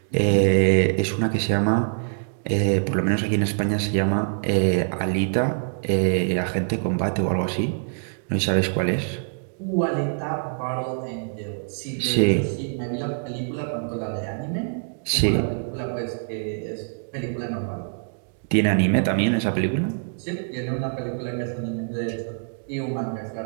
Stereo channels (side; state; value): left; silent; digital silence